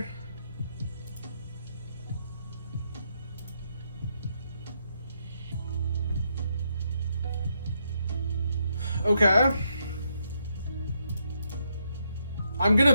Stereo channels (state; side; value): inverted; both; correlation -0.78